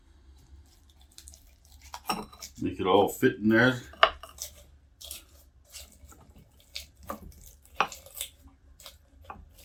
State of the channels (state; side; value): identical; both; correlation 1.00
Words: Make it all fit in there.